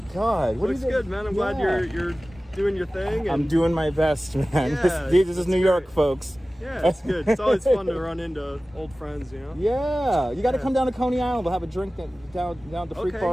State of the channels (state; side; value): normal; both; correlation 0.97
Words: God. What Looks is it? good, man. I'm glad you're doing your thing. And I'm doing my best, man. Yeah, this is New York, great. folks. Yeah, it's good. It's always fun to run into old friends, you know? Yeah, you got to come down to Coney Island. We'll have a drink down at the Freak